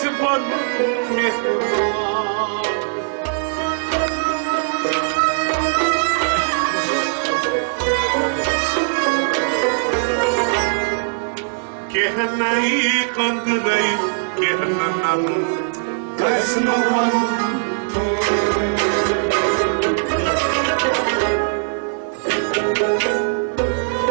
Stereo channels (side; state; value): left; silent; 66 dB below the other